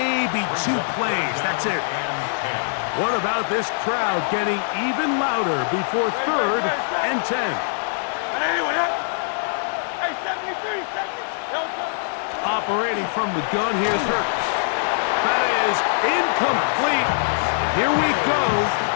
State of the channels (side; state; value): right; silent; digital silence